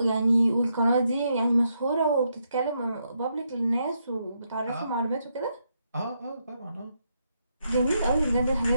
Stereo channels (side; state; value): both; inverted; correlation -0.80